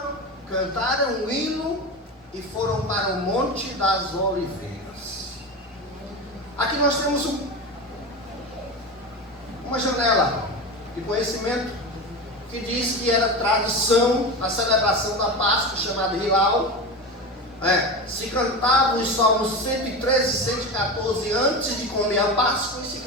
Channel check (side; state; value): both; normal; correlation 0.24